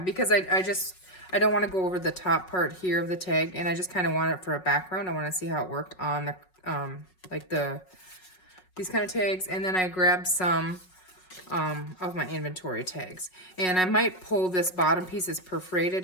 I don't want to go over the top part here of the tag, and I just kind of want it for a background. I want to see how it worked on the these kind of tags. And then I grabbed some of my inventory tags, and I might pull this bottom piece is perforated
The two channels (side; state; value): right; late; 5.4 ms